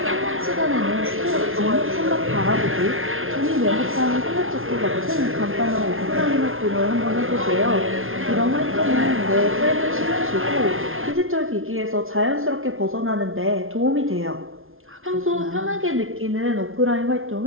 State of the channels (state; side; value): late; left; 0.60 ms